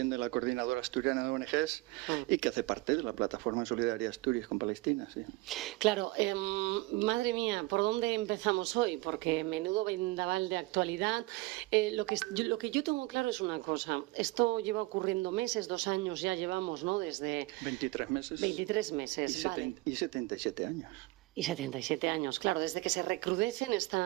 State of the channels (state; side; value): quieter; left; 22.1 dB